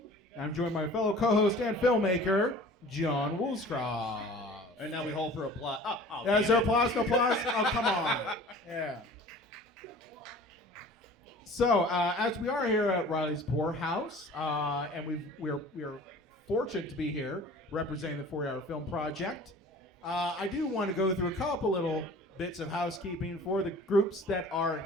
I'm joined by my fellow co-host and filmmaker, John Woolscroft. And now we hold for applause. Is there applause? No applause? Oh, come on. Yeah. So, as we are here at Riley's Poorhouse, and we're fortunate to be here representing the 40-Hour Film Project, I do want to go through a couple little bits of housekeeping for the groups that are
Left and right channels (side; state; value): both; normal; correlation 0.45